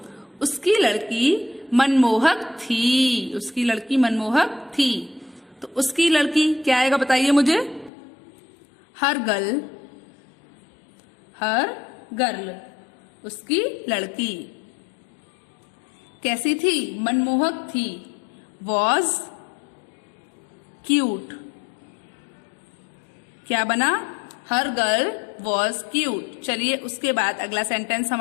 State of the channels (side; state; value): right; drops out; at 7.9 s